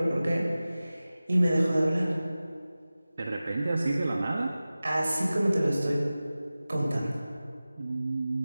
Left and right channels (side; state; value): both; inverted; correlation -0.96